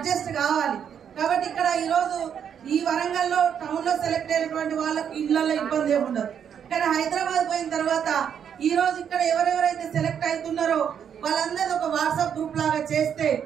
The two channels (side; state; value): left; quieter; 8.2 dB